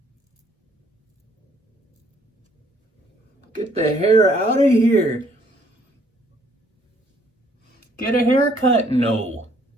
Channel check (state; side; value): normal; both; correlation 0.64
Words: Get the hair out of here. Get a haircut? No.